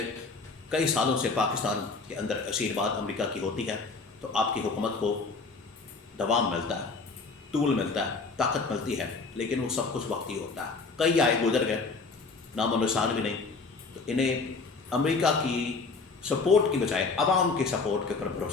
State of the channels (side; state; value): right; quieter; 4.2 dB